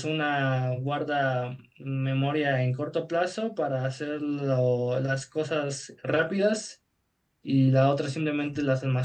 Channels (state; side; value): identical; both; correlation 1.00